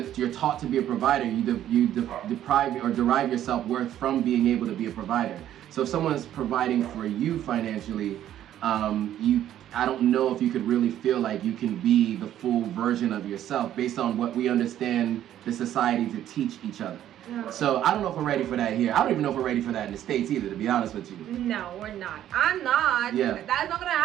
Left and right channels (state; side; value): quieter; left; 11.6 dB